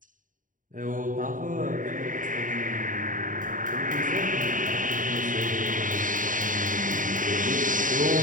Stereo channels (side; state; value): left; late; 0.38 ms